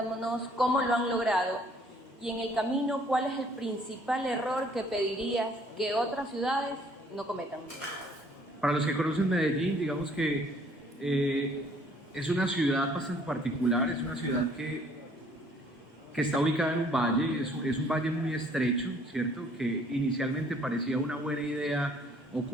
cómo lo han logrado y en el camino cuál es el principal error que pedirías que otras ciudades no cometan. Para los que conocen Medellín, digamos que es una ciudad bastante particular, es una ciudad que está ubicada en un valle, es un valle muy estrecho, ¿cierto? Que inicialmente parecía una buena idea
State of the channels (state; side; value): normal; both; correlation 0.60